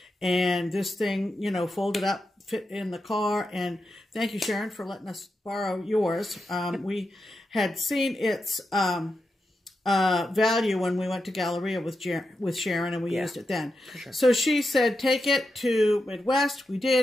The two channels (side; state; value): both; normal; correlation 0.88